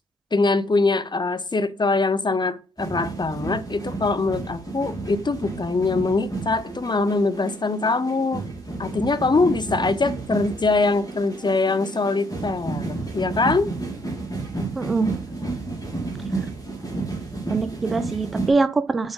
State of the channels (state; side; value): normal; both; correlation 0.70